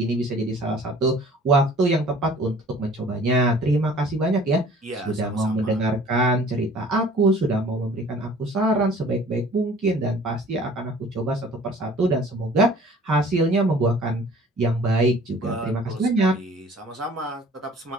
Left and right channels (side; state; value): both; normal; correlation 0.50